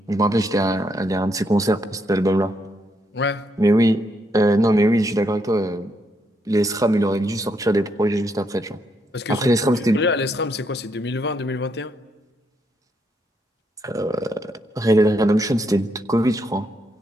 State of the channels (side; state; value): both; normal; correlation 0.76